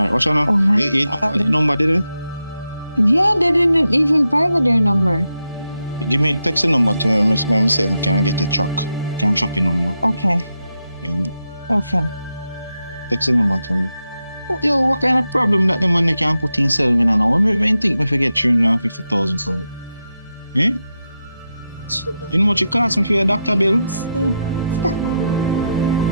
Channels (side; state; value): both; inverted; correlation -0.86